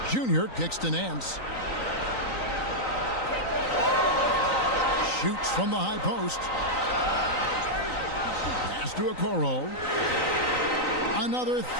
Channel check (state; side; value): late; right; 3.9 ms